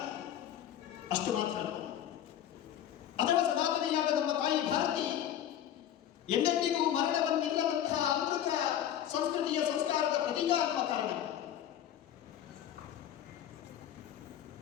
ಅಷ್ಟು ಮಾತ್ರ ಅಥವಾ ಸನಾತನೆಯಾದ ನಮ್ಮ ತಾಯಿ ಭಾರತಿ ಎಂದೆಂದಿಗೂ ಮರಣವನ್ನಿಲ್ಲದಂತಹ ಅಮೃತ ಸಂಸ್ಕೃತಿಯ ಸಂಸ್ಕಾರದ ಪ್ರತೀಕ ಅನ್ನುವ ಕಾರಣ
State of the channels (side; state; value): right; quieter; 10.7 dB